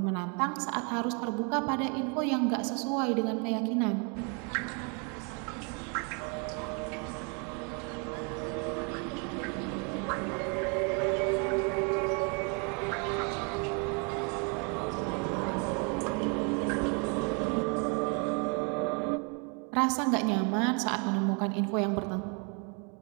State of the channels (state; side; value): quieter; left; 35.9 dB